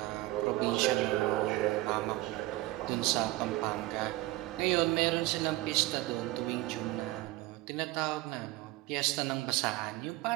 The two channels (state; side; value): quieter; left; 18.6 dB